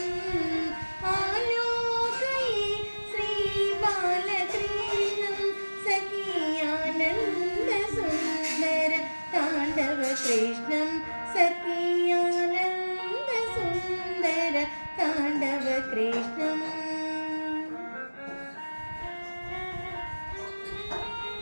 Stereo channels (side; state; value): both; inverted; correlation -1.00